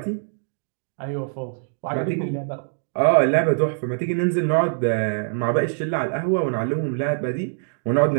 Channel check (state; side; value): silent; left; digital silence